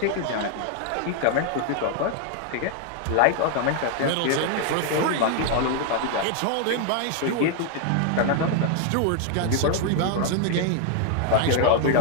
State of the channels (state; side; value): different; both; correlation 0.00